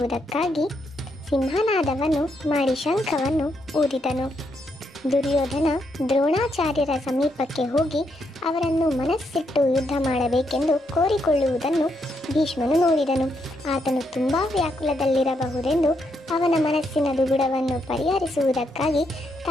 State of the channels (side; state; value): both; normal; correlation 0.78